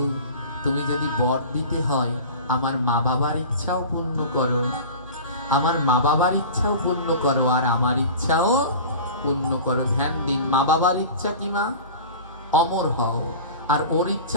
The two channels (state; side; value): inverted; both; correlation -0.36